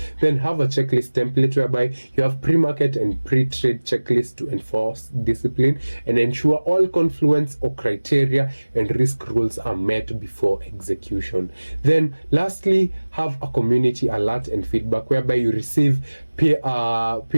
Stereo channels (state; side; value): inverted; both; correlation -1.00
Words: Then have a checklist template, whereby you have pre-market and pre-trade checklists to enforce discipline and ensure all confluence or criteria and risk rules are met before execution. Then lastly, have a community alert and feedback, whereby you receive